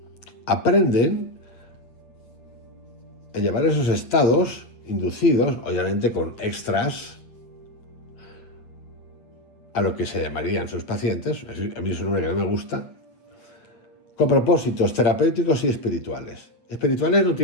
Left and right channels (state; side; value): late; right; 8.5 ms